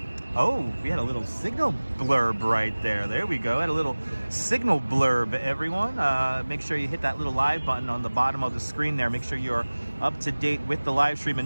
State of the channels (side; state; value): both; inverted; correlation -1.00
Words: Oh, we had a little signal blurb right there. There we go. Had a little signal blurb, everyone. Make sure you hit that little live button on the bottom of the screen there. Make sure you're up to date with the live stream